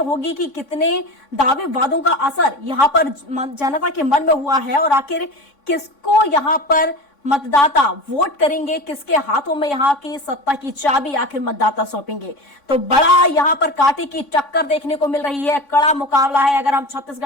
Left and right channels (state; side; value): late; right; 3.6 ms